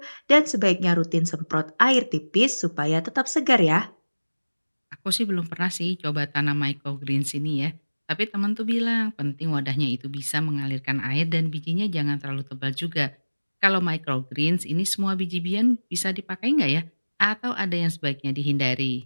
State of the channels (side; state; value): both; inverted; correlation -1.00